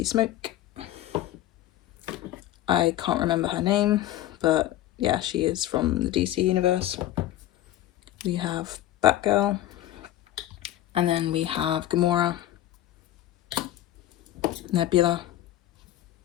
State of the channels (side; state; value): right; quieter; 13.6 dB